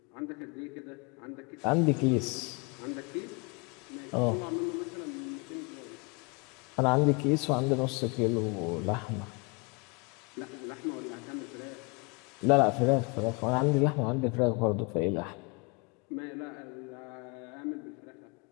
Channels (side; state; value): right; quieter; 30.6 dB